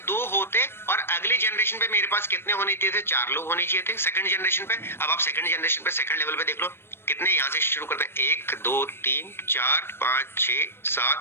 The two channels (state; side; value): late; right; 0.11 ms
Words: 2 होते और अगले जनरेशन पे मेरे पास कितने होने चाहिए थे, 4 लोग होने चाहिए थे सेकंड जनरेशन पे। अब आप सेकंड जनरेशन पे सेकंड लेवल पे देख लो कितने, यहां से शुरू करते हैं, 1 2 3 4 5 6